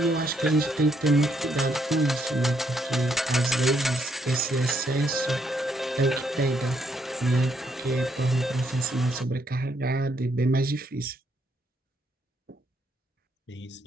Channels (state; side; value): normal; both; correlation 0.73